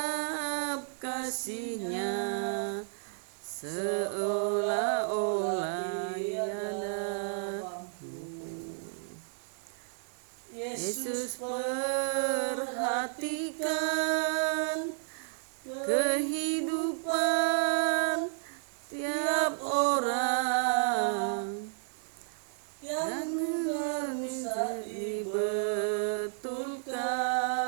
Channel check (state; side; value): silent; left; 56 dB below the other